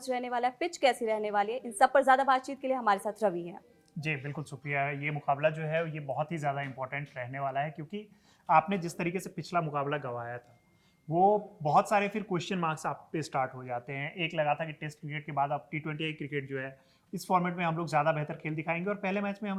रहने वाला है, पिच कैसी रहने वाली है, इन सब पर ज्यादा बातचीत के लिए हमारे साथ रवि हैं। जी बिल्कुल सुप्रिया, ये मुकाबला जो है ये बहुत ही ज़्यादा इंपॉर्टेंट रहने वाला है, क्योंकि आपने जिस तरीके से पिछला मुकाबला गंवाया था वो बहुत सारे फिर क्वेश्चन मार्क्स आप पे स्टार्ट हो जाते हैं। एक लगा था कि टेस्ट क्रिकेट के बाद अब टी20 क्रिकेट जो है इस फॉर्मेट में हम लोग ज़्यादा बेहतर खेल दिखाएंगे, और पहले मैच में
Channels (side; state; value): both; identical; correlation 1.00